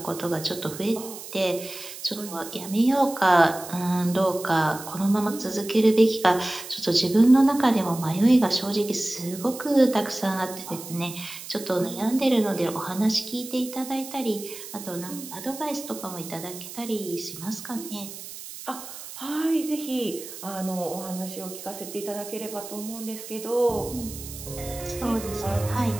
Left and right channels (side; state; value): right; noise; hiss, 12 dB below the sound